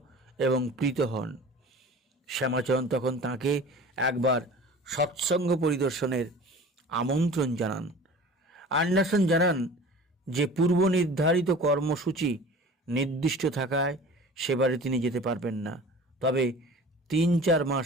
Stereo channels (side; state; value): both; normal; correlation 0.41